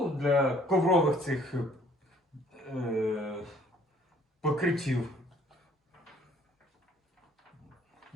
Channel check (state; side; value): normal; both; correlation 0.59